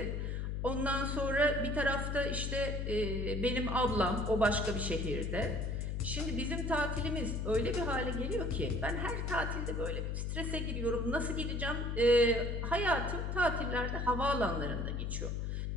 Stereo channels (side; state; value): left; noise; hum, 2 dB below the sound